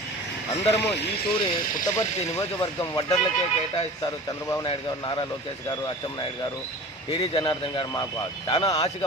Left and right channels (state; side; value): normal; both; correlation 0.39